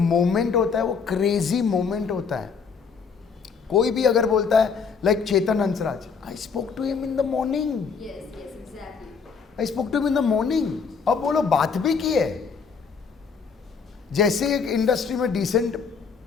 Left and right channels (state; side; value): quieter; right; 5.7 dB